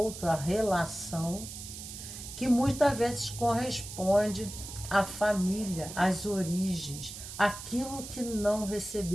a relação, que muitas vezes corresponde à família, às origens, aquilo que não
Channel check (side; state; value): right; noise; hiss, 11 dB below the sound